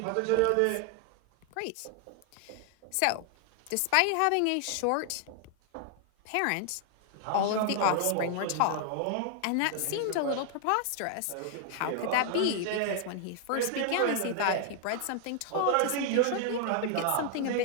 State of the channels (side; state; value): both; different; correlation 0.00